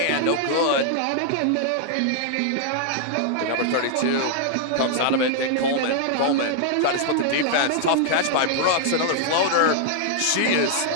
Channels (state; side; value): different; both; correlation -0.01